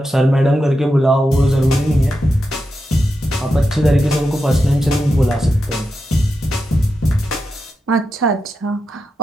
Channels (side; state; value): both; normal; correlation 0.88